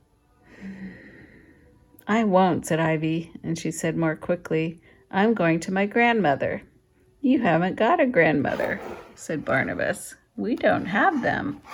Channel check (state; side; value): identical; both; correlation 1.00